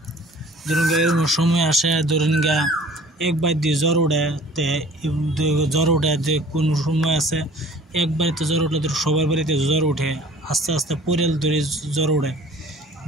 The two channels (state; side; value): normal; both; correlation 0.49